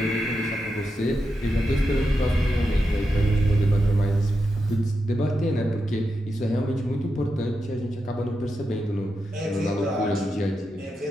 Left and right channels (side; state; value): both; normal; correlation 0.87